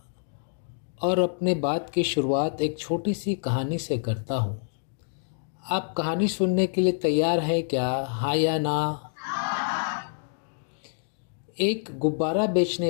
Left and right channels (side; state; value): right; silent; digital silence